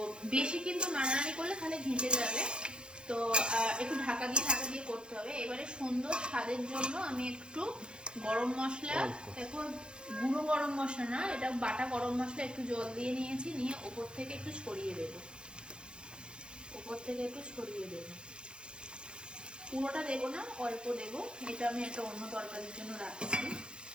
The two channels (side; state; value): left; late; 0.052 ms